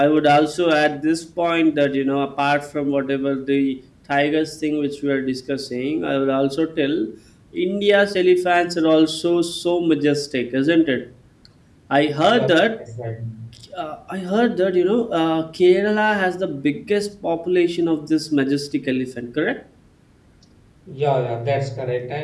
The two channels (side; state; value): both; identical; correlation 1.00